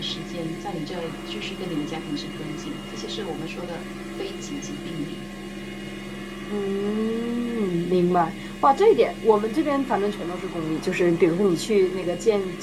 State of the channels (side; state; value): both; identical; correlation 1.00